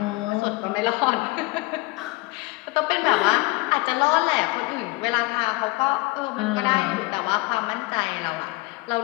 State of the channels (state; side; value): quieter; right; 23.1 dB